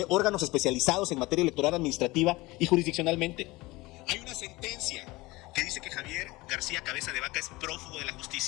órganos especializados en materia electoral administrativa y jurisdiccionalmente. Hay una sentencia que dice que Javier García Cabeza de Vaca es prófugo de la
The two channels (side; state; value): right; quieter; 21.2 dB